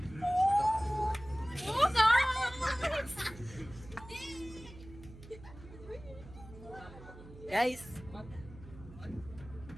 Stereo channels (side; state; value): right; noise; hum, 17 dB below the sound